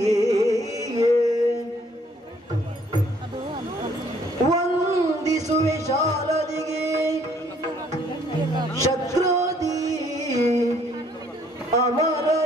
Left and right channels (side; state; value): both; normal; correlation 0.63